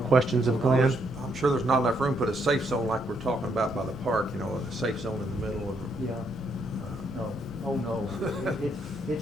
of Glenn? I'm sure there's not enough room to put a safe zone like we're talking about by the park, you know, a safe zone in the middle of. Yeah. No, oh no.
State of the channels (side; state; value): both; normal; correlation 0.74